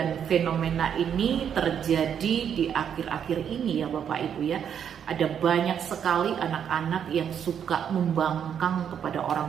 fenomena ini terjadi di akhir-akhir ini ya Bapak Ibu ya. Ada banyak sekali anak-anak yang suka membangkang kepada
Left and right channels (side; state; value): left; quieter; 8.4 dB